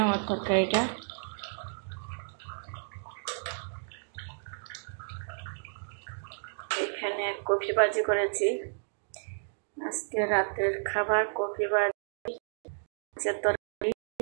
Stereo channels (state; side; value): silent; left; digital silence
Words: আমার তরকারিটা? এখানে কফি ভাজি করেছি, আজকে রাতের খাবার কফি ভাজি, তরকারি,